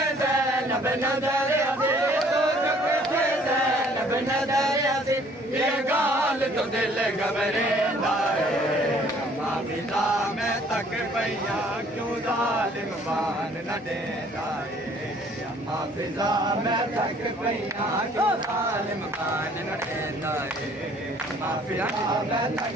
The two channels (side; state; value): both; normal; correlation 0.58